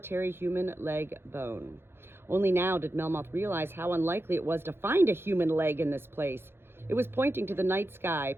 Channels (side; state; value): left; late; 0.11 ms